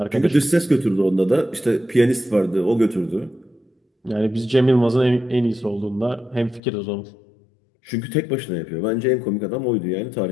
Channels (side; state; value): right; drops out; at 6.6 s